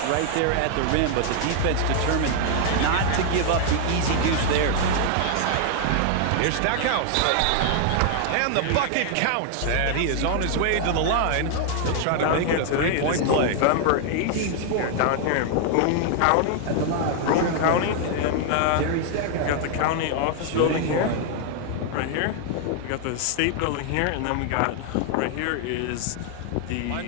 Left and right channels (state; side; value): different; both; correlation 0.00